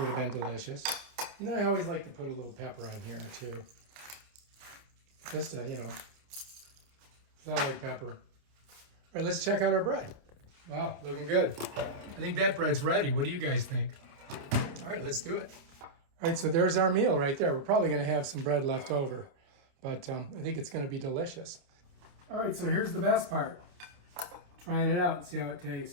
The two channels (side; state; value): left; late; 28 ms